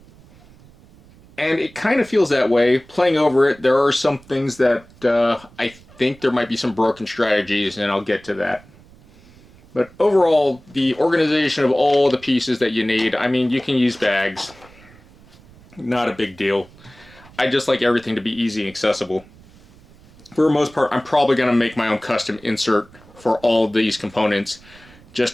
And it kind of feels that way. Playing over it, there are some things that I think there might be some broken strategies, and I'll get to that. But overall, the organization of all the pieces that you need, I mean, you can use bags. Not a big deal. I just like everything to be easy and accessible. For the most part, I'm probably going to make my own custom insert for all of these components,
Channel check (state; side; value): noise; right; rumble, 25 dB below the sound